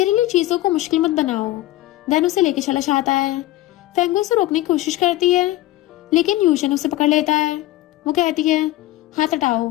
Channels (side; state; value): right; quieter; 16.4 dB